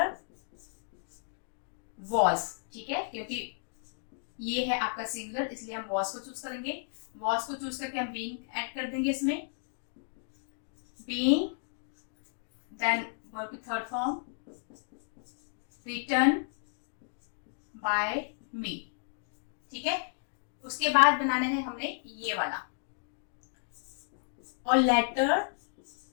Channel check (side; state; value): right; silent; digital silence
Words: was, ठीक है, क्योंकि ये है आपका सिंगुलर इसलिए हम वॉज को चूज करेंगे। वॉज को चूज करके हम बीइंग ऐड कर देंगे इसमें, बीइंग, देन वर्ब की थर्ड फॉर्म, रिटन बाय मी, ठीक है। उसके बाद बनाना है हमने ये वाला, और लेटर।